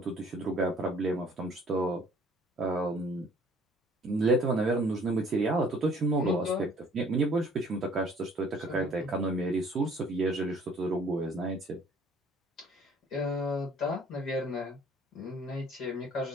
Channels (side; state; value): both; normal; correlation 0.55